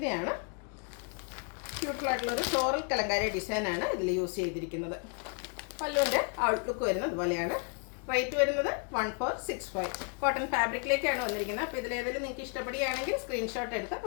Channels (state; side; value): quieter; right; 39.2 dB